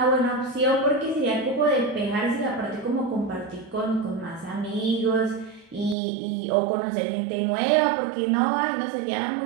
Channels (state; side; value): drops out; left; at 6.0 s